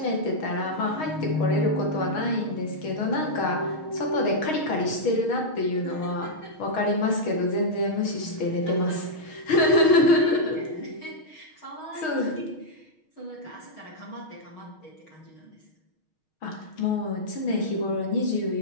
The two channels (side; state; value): right; late; 6.4 ms